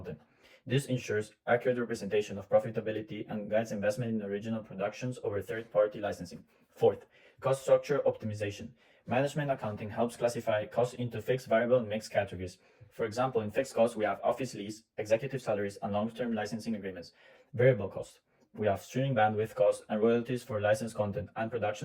This ensures accurate representation of profitability and guides investment in original productions over third-party licensing. Fourth, cost structure optimization. Management accounting helps classify costs into fixed, variable, and mixed categories. For example, in fixed costs, we have office lease, executive salaries, and long-term licensing agreements. Variable costs, we have streaming bandwidth costs and royalties for licensed content and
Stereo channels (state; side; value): identical; both; correlation 1.00